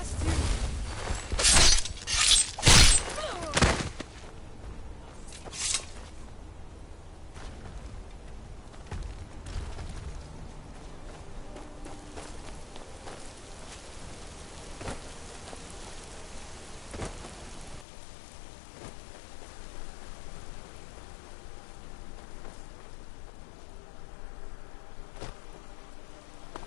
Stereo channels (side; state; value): right; drops out; at 17.9 s